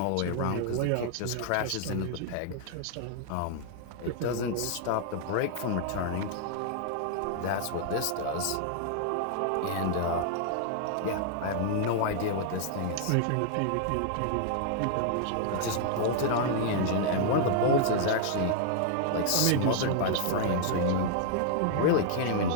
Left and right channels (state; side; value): different; both; correlation -0.01